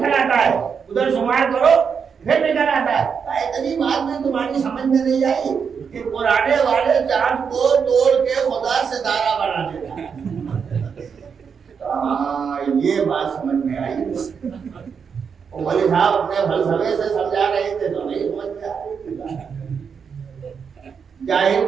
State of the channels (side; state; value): left; quieter; 6.4 dB